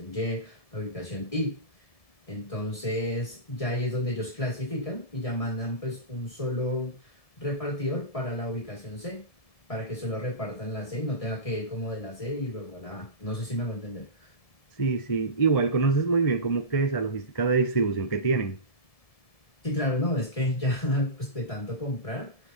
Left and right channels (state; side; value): late; right; 1.7 ms